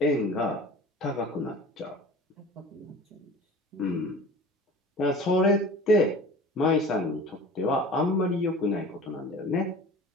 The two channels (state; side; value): normal; both; correlation 0.40